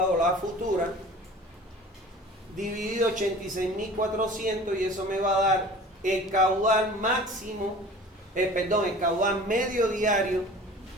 la futura, dividido 86.400, y eso me va a dar el caudal máximo, el caudal medio diario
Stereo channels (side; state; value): both; normal; correlation 0.42